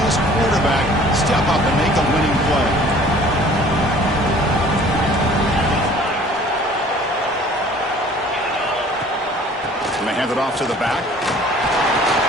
this quarterback step up and make a winning play? And they hand it off to the back.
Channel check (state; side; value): normal; both; correlation 0.51